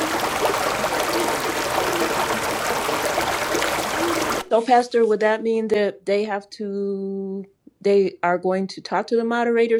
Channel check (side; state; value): both; identical; correlation 1.00